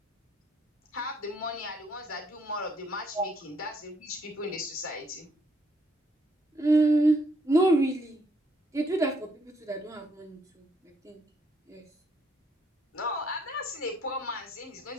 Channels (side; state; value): both; normal; correlation 0.70